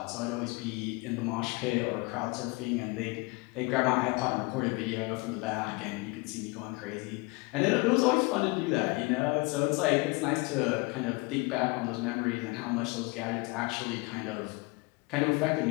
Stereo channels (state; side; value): quieter; right; 26.4 dB